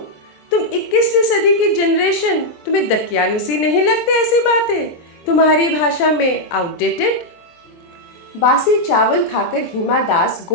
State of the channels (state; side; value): late; right; 23 ms